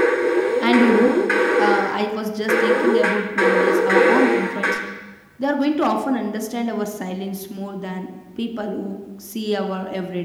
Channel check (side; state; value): both; identical; correlation 1.00